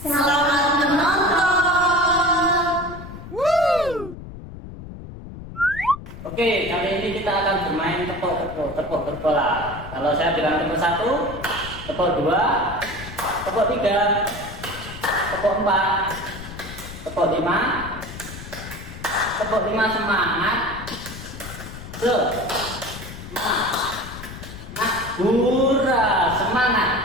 menonton. Oke, kali ini kita akan bermain tepuk bola. Kalau saya bilang tepuk 1, tepuk 2, tepuk 3, tepuk 4, tepuk 5, tepuk 5 semangat. Hura, semangat.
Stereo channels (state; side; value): noise; left; rumble, 12 dB below the sound